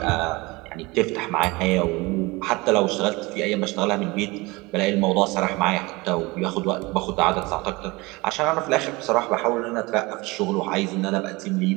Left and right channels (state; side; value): quieter; left; 23.6 dB